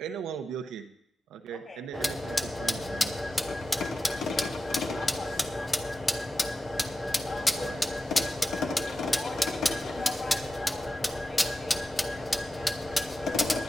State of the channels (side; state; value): both; normal; correlation 0.92